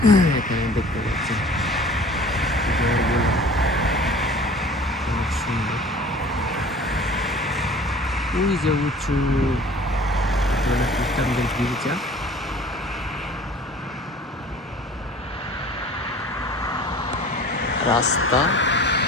এখানে দেখতে পাচ্ছেন ঘরগুলো অনেক সুন্দর। ওই যে উঁচু খ্রিস্টানদের গির্জা। রাস্তা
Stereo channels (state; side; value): normal; both; correlation 0.46